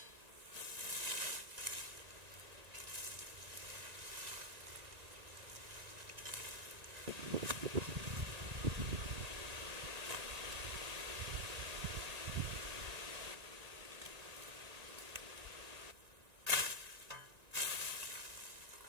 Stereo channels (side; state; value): left; late; 1.9 ms